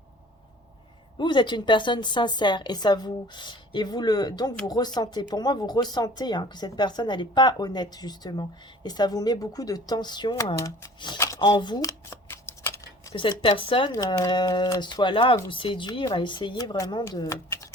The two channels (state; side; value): normal; both; correlation 0.48